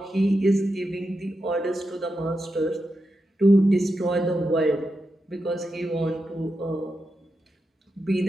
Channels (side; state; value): both; normal; correlation 0.87